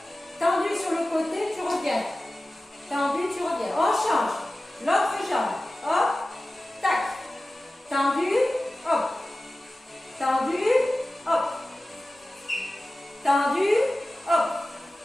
Tendu sur le côté.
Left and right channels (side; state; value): both; normal; correlation 0.96